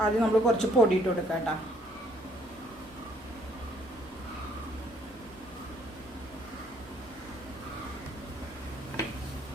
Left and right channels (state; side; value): normal; both; correlation 0.65